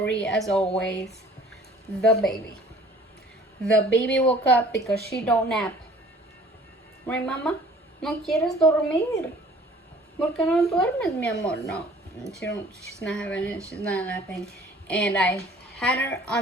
as always. The baby. The baby woke up because she don't nap. Right, mama? No quieres dormir. ¿Por qué no duermes, mi amor? No, she's not having it. She's not napping. And I had her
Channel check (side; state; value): both; normal; correlation 0.51